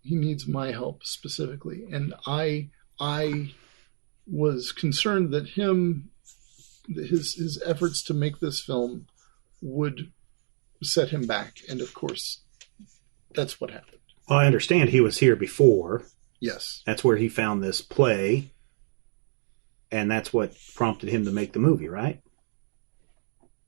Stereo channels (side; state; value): left; silent; digital silence